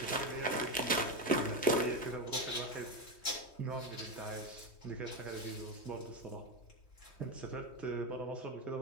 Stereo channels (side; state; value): right; late; 3.2 ms